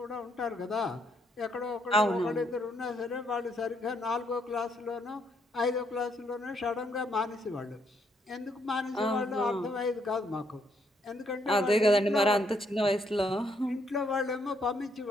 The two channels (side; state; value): both; normal; correlation 0.73